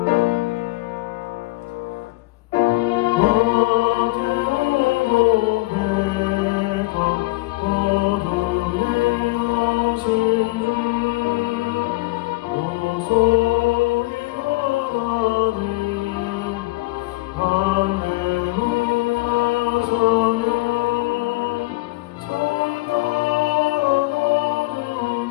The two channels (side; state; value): right; quieter; 22.2 dB